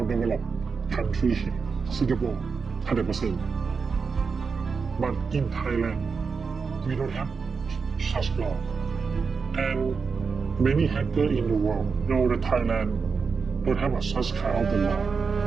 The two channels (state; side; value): quieter; left; 5.2 dB